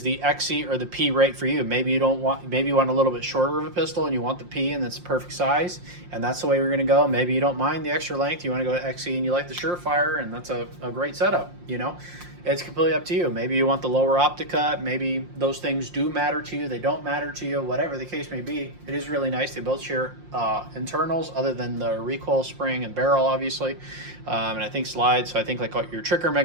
the XC or the P right for you? Maybe you want a little bit shorter of a pistol and you want the P and it's the perfect size, and that's the way we're going to go. Maybe you don't mind the extra length, you want to go to XC and you like the Surefire, and that's a great setup. You know, it's completely up to you. Maybe you want the lower optic cut. Maybe those things do matter to you, they don't matter to you, whatever the case may be. It is really nice. They both share internals other than the recoil spring and barrel, obviously, and I think slides. So I think like your trigger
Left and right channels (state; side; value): late; left; 5.7 ms